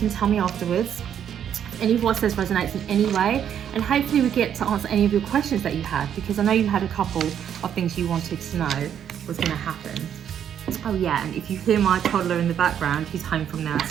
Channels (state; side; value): quieter; left; 9.2 dB